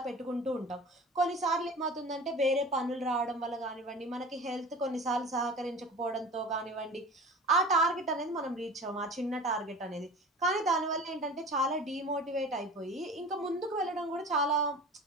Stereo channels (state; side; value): normal; both; correlation 0.39